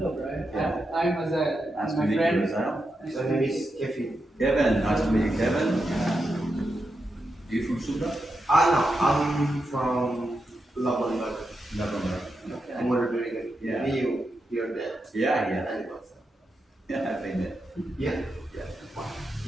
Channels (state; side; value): normal; both; correlation 0.87